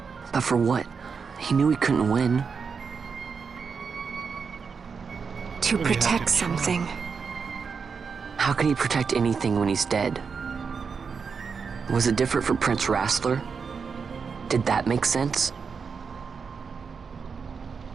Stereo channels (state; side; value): quieter; left; 5.6 dB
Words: But for what? He knew he couldn't win. To Well, you have to protect try. something. How can he protect anything when he's dead? Was it different for Prince Rassler? Did that make sense?